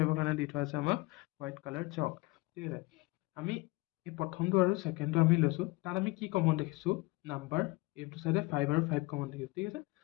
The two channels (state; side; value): quieter; right; 23.3 dB